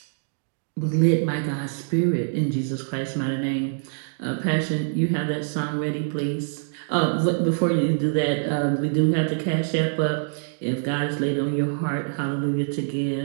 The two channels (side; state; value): left; silent; digital silence